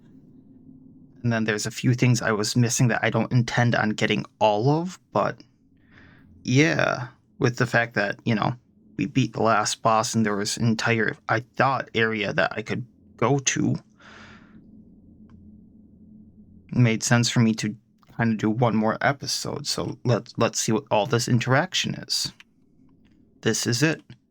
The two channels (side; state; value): both; identical; correlation 1.00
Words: then there's a few things I was missing that I don't intend on getting all of, but yeah, with the fact that, you know, we beat the last boss and there was an entire, I thought, area that I could go to, it made sense for me to kind of do 1 more episode. So let's see what all this interaction is. This is it.